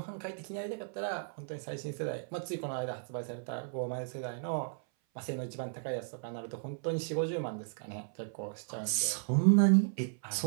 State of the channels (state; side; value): silent; left; 55 dB below the other